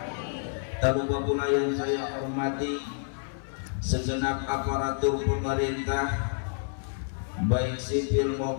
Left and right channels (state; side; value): silent; right; 59 dB below the other